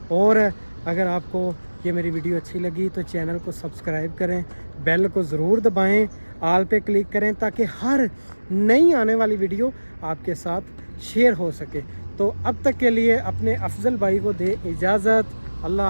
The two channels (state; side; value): inverted; both; correlation -1.00